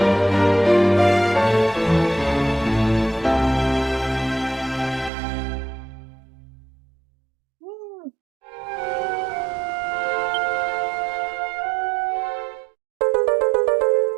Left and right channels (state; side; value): drops out; left; at 5.1 s